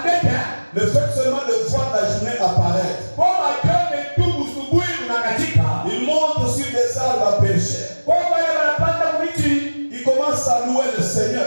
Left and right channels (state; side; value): inverted; both; correlation -1.00